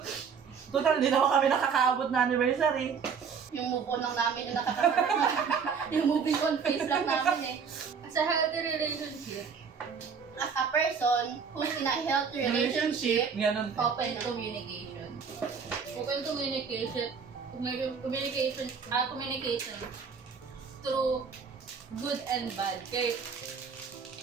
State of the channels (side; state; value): left; quieter; 6.2 dB